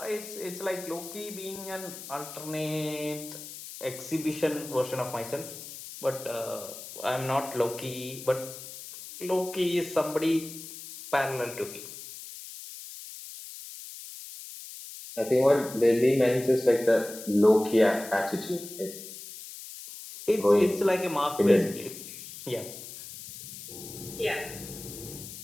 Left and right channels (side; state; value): left; noise; hiss, 12 dB below the sound